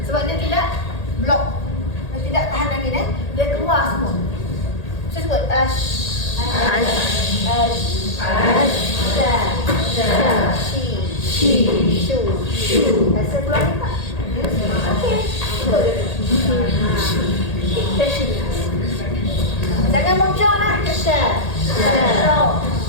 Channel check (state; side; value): late; right; 1.8 ms